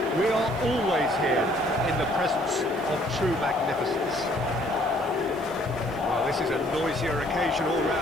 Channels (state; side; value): noise; right; hiss, 24 dB below the sound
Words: We are always here in the presence of true magnificence. Well, this is a noisier occasion all